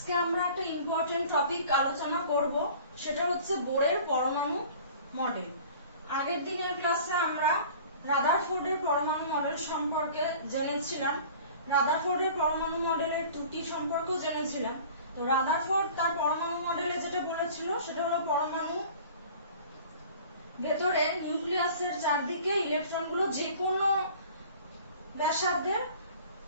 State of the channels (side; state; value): both; inverted; correlation -0.45